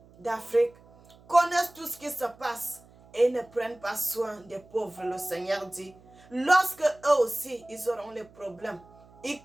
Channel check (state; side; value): noise; right; hum, 26 dB below the sound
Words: d'Afrique connaissent tout ce qui se passe et ne prennent pas soin des pauvres, le Seigneur dit. Lorsque eux aussi, ils auront les problèmes, ils